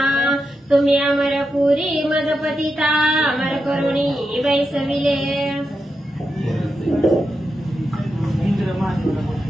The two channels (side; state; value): both; normal; correlation 0.87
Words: तुम्ही अमरपुरी मदपतिता अमर करुणी बैसविले.